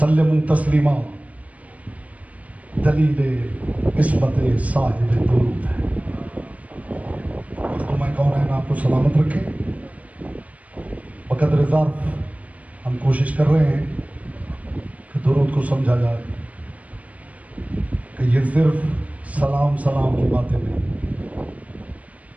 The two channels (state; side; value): late; left; 0.069 ms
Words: तस्लीमा दलीले इस्मत साहिब दुरूद है। तो मैं कौन है ना आपको सलामत रखे। बकदर ज़र्फ़ हम कोशिश कर रहे हैं कि दुरूद को समझा जाए कि ये सिर्फ सलाम सलाम की बातें नहीं।